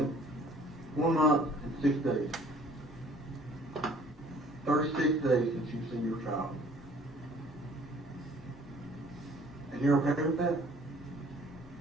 1 month and 6 days. 36 days since you've seen your child. And you're okay with that?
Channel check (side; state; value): both; normal; correlation 0.55